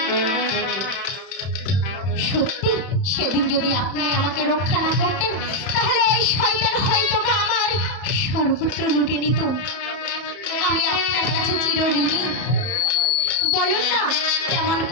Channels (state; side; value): late; right; 31 ms